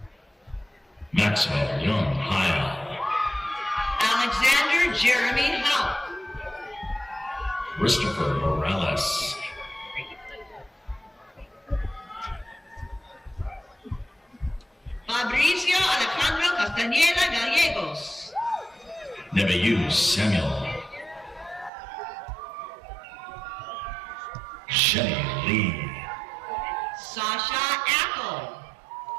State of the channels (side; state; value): left; drops out; at 21.7 s